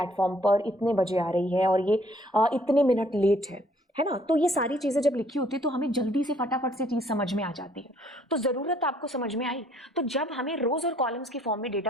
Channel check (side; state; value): both; normal; correlation 0.63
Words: पर इतने बजे आ रही है और ये इतने मिनट लेट है ना। तो ये सारी चीज़ें जब लिखी होती है तो हमें जल्दी से फटाफट से चीज़ समझ में आ जाती है। तो ज़रूरत आपको समझ में आई। तो जब हमें रोज और कॉलम्स की फॉर्म में